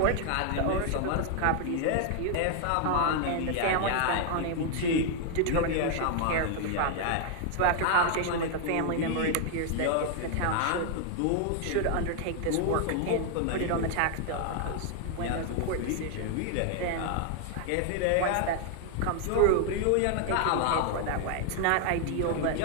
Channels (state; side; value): different; both; correlation 0.00